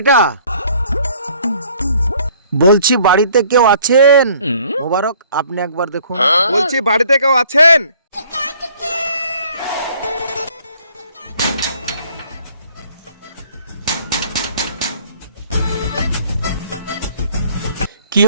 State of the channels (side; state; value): both; inverted; correlation -0.58